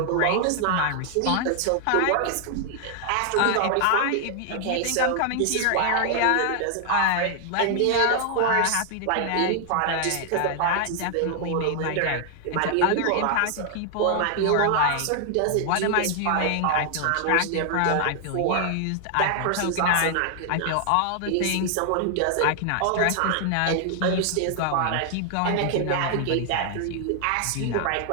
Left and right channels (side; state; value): both; different; correlation 0.00